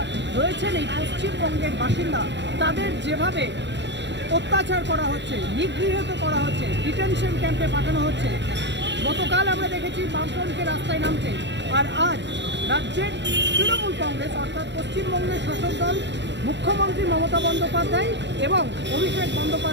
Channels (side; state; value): left; late; 0.52 ms